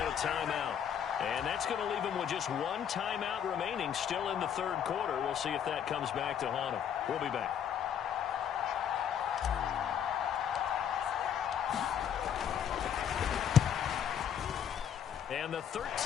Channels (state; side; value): quieter; right; 8.8 dB